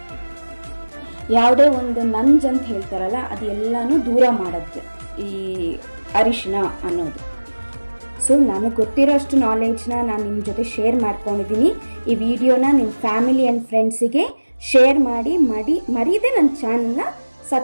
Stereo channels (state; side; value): inverted; both; correlation -1.00